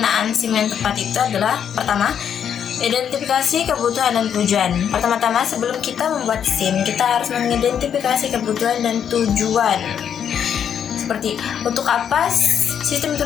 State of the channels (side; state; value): right; quieter; 8.4 dB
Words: SIM yang tepat itu adalah pertama, identifikasi kebutuhan dan tujuan. Pertama-tama sebelum kita membuat SIM, kita harus mengidentifikasi kebutuhan dan tujuan. Seperti untuk apa sistem